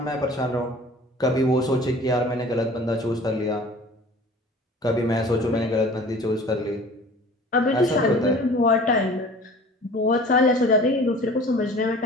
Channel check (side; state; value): both; normal; correlation 0.45